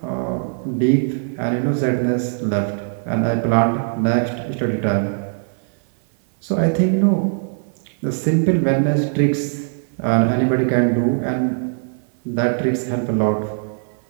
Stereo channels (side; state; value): left; silent; 65 dB below the other